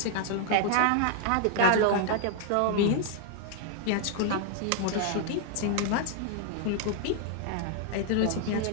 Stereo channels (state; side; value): different; both; correlation 0.00